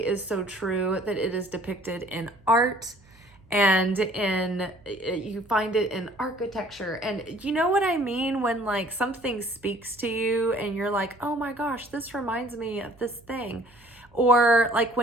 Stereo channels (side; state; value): right; noise; hum, 29 dB below the sound